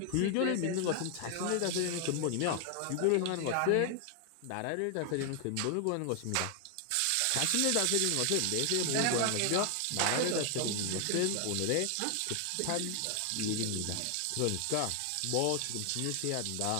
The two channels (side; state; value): both; different; correlation 0.00